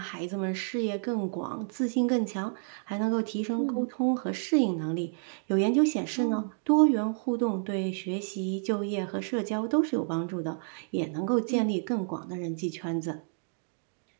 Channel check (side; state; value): left; silent; digital silence